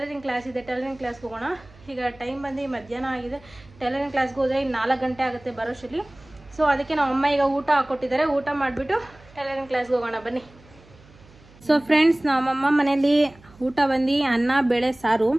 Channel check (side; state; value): right; noise; hum, 25 dB below the sound